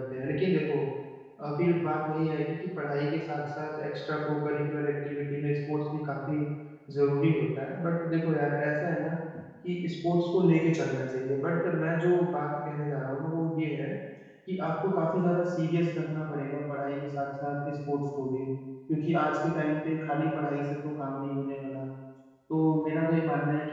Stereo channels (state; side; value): identical; both; correlation 1.00